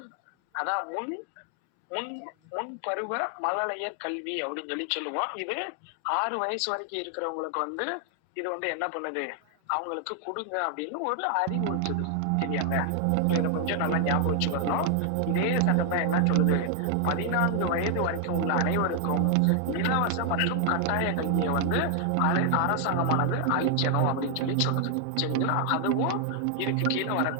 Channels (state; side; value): different; both; correlation 0.00